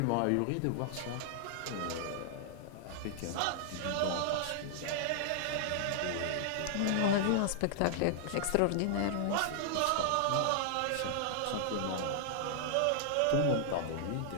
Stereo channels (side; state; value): both; different; correlation -0.01